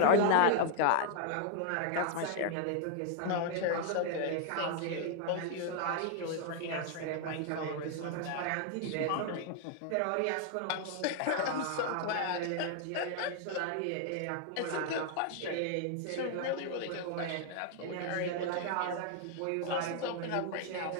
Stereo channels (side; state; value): both; different; correlation 0.00